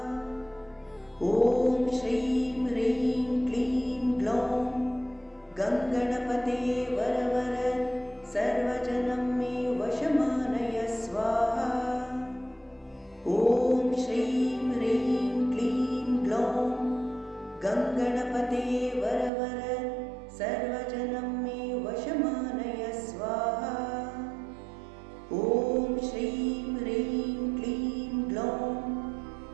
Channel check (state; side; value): drops out; left; at 19.3 s